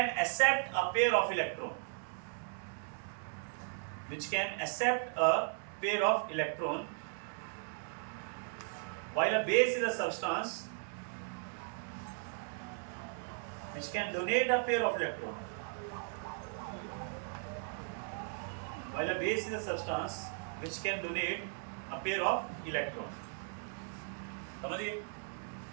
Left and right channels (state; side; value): silent; left; 53 dB below the other